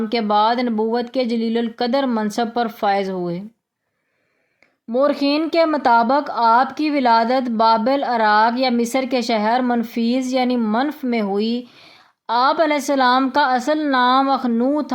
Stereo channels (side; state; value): both; identical; correlation 1.00